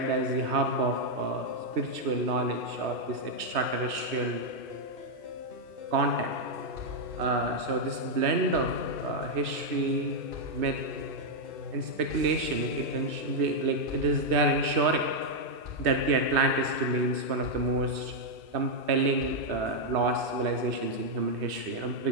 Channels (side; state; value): left; late; 2.6 ms